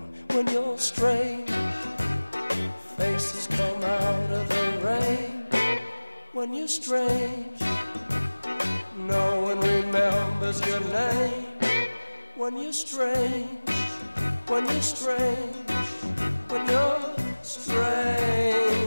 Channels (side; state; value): both; inverted; correlation -1.00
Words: When you're strange, faces come out of the rain. When you're strange, no one remembers your name. When you're strange, when you're strange, when you're